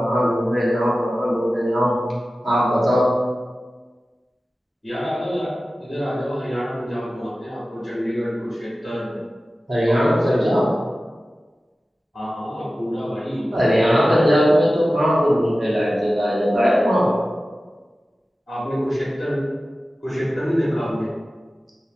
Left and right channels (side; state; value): both; normal; correlation 0.95